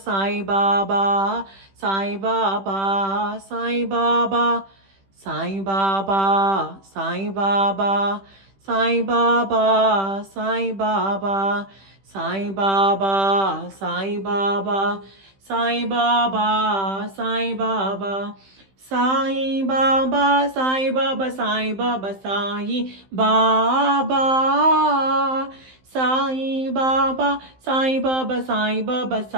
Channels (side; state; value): left; late; 15 ms